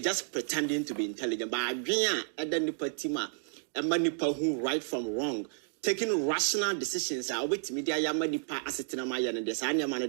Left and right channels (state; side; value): silent; left; digital silence